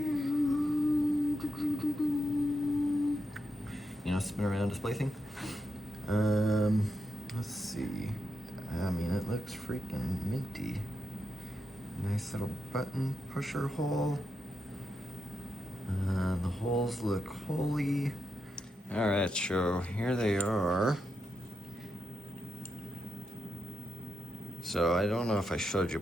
you know, spin around display thing. Let's see. I mean, it looks freaking minty. Nice little button pusher hole. The holes look holy. All right, so here they are. So I don't know if I showed you,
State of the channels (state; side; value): normal; both; correlation 0.85